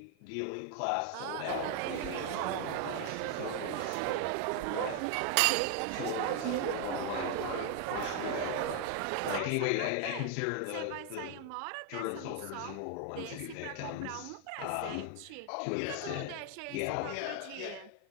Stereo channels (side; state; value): both; different; correlation 0.00